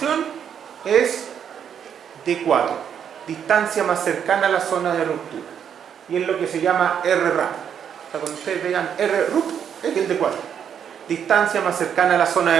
es D4, distancia más cercana a la zona de ruptura, y es lo que se llama RRAP. O sea, cuando ustedes vean RRUP, es el D4, distancia más cercana a la zona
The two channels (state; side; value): quieter; left; 8.3 dB